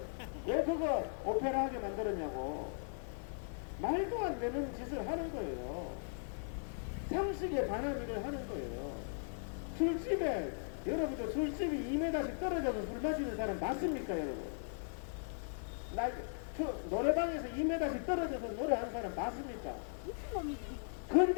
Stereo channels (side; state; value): right; silent; 52 dB below the other